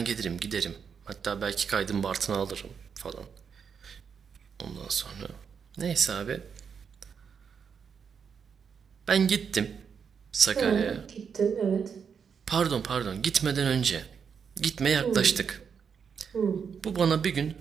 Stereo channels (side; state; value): left; quieter; 6.7 dB